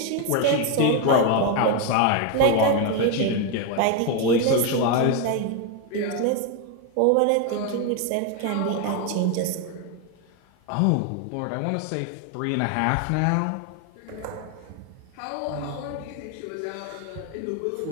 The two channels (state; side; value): different; both; correlation 0.01